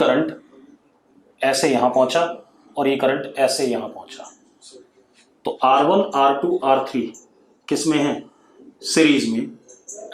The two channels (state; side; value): identical; both; correlation 1.00